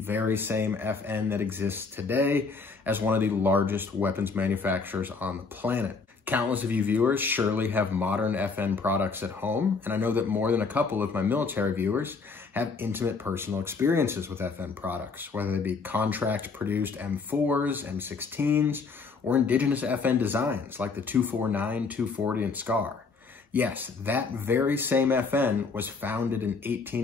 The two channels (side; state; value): right; quieter; 4.6 dB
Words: same FN that exists today as one of the largest weapons manufacturers on the planet. Countless of you viewers surely have modern FN products at home, and I know that more than a couple of my military viewers have intimate personal experiences with FN products, whether they be contract-produced M4s, M16s, or indigenous FN designs like the 249, 240, and SCAR. Yes, that very same FN was founded in